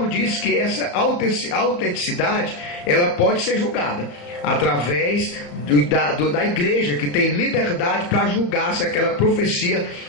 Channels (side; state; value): right; late; 34 ms